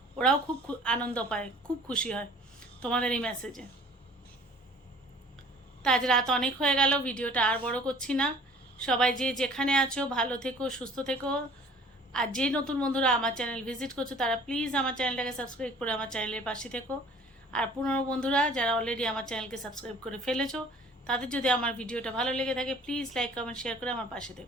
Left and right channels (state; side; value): normal; both; correlation 0.50